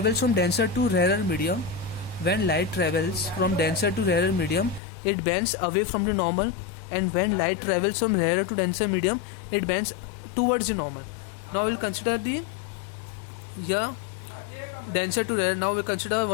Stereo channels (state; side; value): drops out; right; at 4.8 s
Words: from denser to rarer medium, it bends away from the normal, and when light travels from rarer to denser medium, it bends towards the normal. Now we'll consider the denser to rarer. Now we'll consider